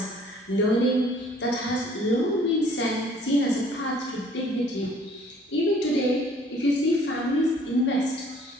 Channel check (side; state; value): both; normal; correlation 0.56